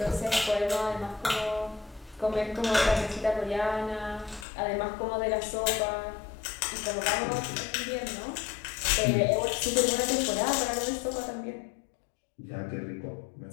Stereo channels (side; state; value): right; drops out; at 4.5 s